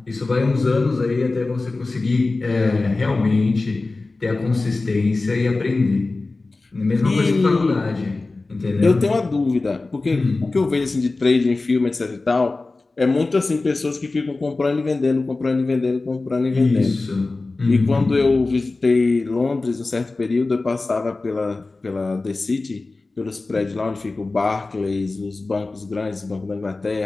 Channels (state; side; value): quieter; right; 3.4 dB